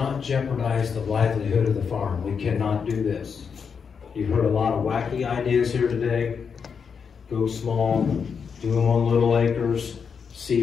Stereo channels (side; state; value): right; quieter; 6.3 dB